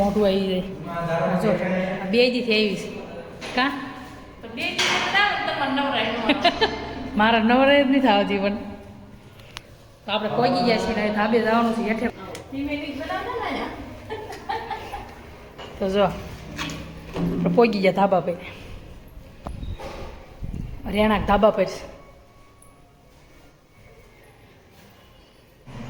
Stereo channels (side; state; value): both; identical; correlation 1.00